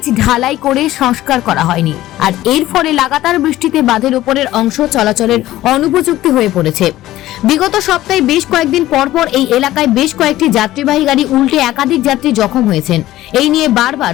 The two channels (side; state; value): right; quieter; 15.2 dB